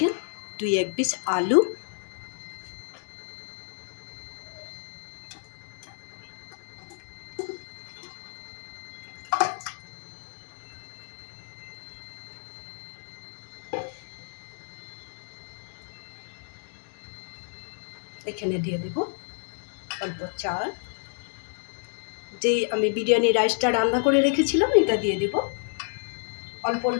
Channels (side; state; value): right; silent; 58 dB below the other